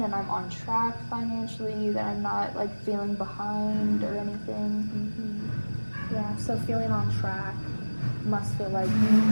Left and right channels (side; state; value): both; inverted; correlation -1.00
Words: and I'm on track financially, that I'm not like feeling behind or anything. Mm-hmm. Yeah, so feeling on track must feel like